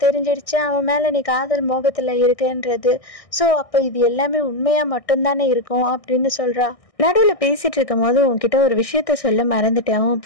தெரிஞ்சிடுச்சு அவன் மேலே நீ காதல் மோகத்தில் இருக்குன்றது, ஸோ அப்போ இது எல்லாமே உண்மையாக மட்டும்தானே இருக்கும் அப்படின்னு சொல்கிறா. நடுவில் பேசிகிட்டு இருக்கும் போது உன்கிட்ட ஒரு விஷயத்த சொல்ல மறந்துட்டேன், உன்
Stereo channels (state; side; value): late; right; 1.6 ms